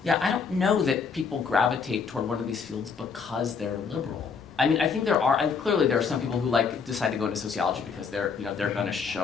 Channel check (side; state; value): right; quieter; 5.7 dB